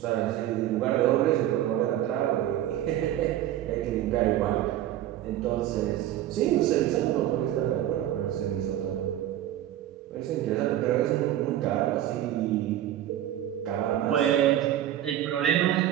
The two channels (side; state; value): left; quieter; 12.6 dB